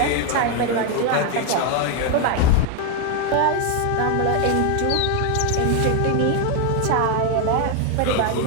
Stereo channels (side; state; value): both; different; correlation 0.01